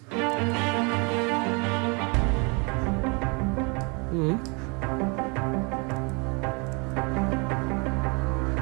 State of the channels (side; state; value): left; quieter; 31.7 dB